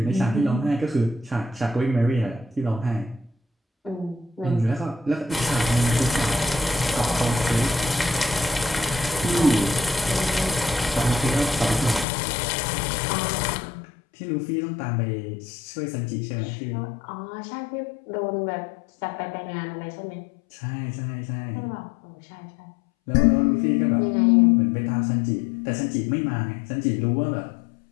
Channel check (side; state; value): right; drops out; at 12.1 s